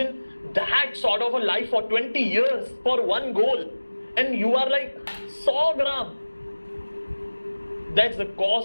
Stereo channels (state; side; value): inverted; both; correlation -1.00